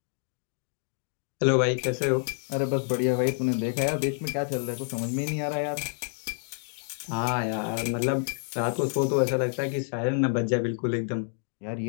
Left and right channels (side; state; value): right; silent; 59 dB below the other